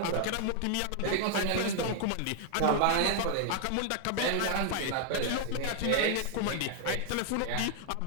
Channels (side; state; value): both; different; correlation 0.00